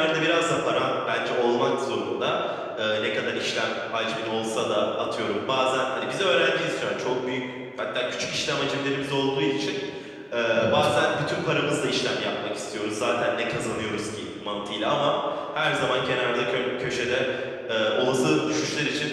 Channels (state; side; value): identical; both; correlation 1.00